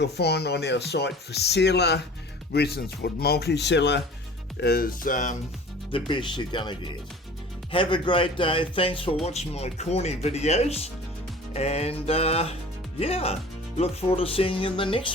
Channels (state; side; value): normal; both; correlation 0.44